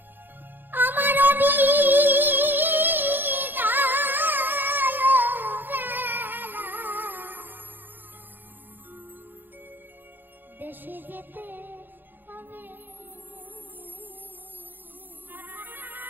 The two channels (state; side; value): late; left; 0.093 ms